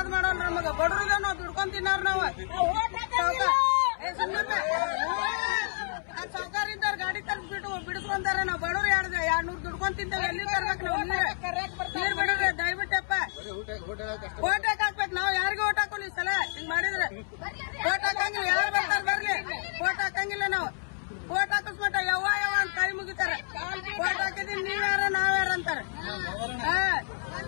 ಮಾಡೋಲ್ಲ ನಮಗ ಬಡ್ರದ ನಾವ್ ದುಡ್ಕೊಂಡ್ ತಿನ್ನೋರ್ ನಾವು ಸೌಕಾರ ಇದ್ದಾರ ಗಾಡಿ ತರ್ಬಿಟ್ಟು ಬಿಡ್ಕೊಂತಾರ ನಾವ್ ಬಡವ್ರು 200 ದುಡ್ಕೊಂಡ್ ತಿಂತೇವೆ ಎಲ್ಲಿ ತರ್ಬೇಕು ನಾವು ನೀರ್ ಬಿಡ್ರಿ ದಯವಿಟ್ಟಪ್ಪ ಓಟ್ ಹಾಕ್ಬೇಕು ನಾವ್ ಯಾರಿಗೂ ಓಟ್ ಹಾಕೋಲ್ಲ ಈ ಸಲ ಹಿಂಗ್ ಮಾಡಿದ್ರೆ ಓಟ್ ಹಾಕಂಗಿಲ್ಲ ಯಾರು ಬರ್ತಾರ ಬರ್ಲಿ ಓಟ್ ಹಾಕಂಗಿಲ್ಲ ನಾವು ಓಟ್ ಹಾಕಿಸ್ಮಟ ಯವ್ವ ಅಂತ ಕೈ ಮುಗಿತಾರ ಓಟ್ ಹಾಕಿದೀವಿ ನೀವ್ಯಾರ ನಾವ್ಯಾರ ಅಂತಾರ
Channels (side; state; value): right; silent; 59 dB below the other